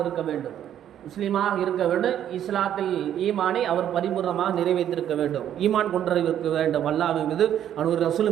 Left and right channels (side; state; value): left; quieter; 10.5 dB